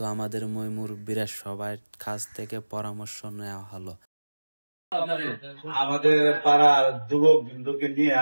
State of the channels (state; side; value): inverted; both; correlation -1.00